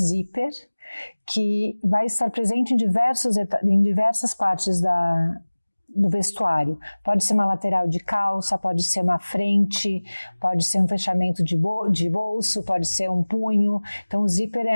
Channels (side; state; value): both; inverted; correlation -1.00